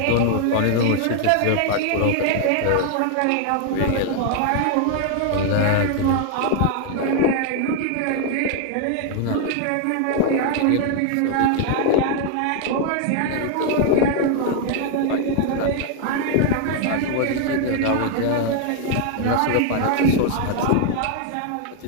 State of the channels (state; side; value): different; both; correlation 0.00